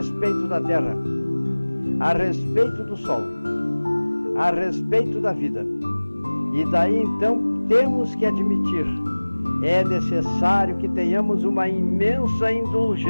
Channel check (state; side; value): inverted; both; correlation -1.00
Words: da Terra, a respeito do Sol, a respeito da vida. E daí então temos que admitir, é necessário que tenhamos uma imensa